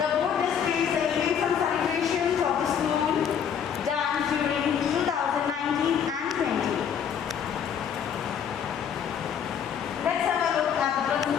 board displays the events and celebrations of the school done during 2019 and 20. Let's have a look at the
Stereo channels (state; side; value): quieter; right; 8.0 dB